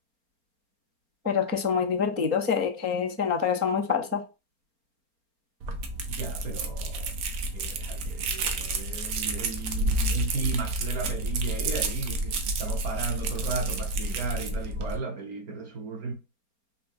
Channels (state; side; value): late; left; 4.3 ms